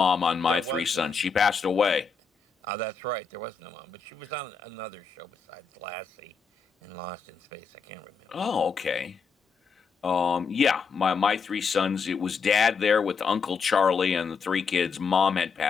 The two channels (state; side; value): quieter; right; 5.4 dB